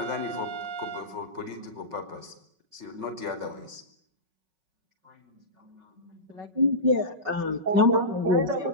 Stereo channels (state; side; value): late; left; 5.4 ms